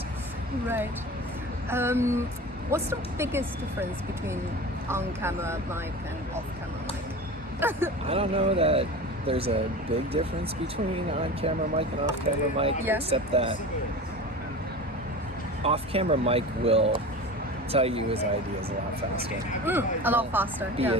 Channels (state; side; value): normal; both; correlation 0.33